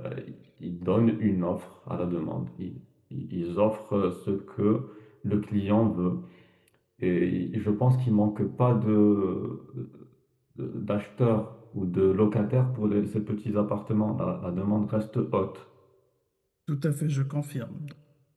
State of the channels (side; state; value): both; identical; correlation 1.00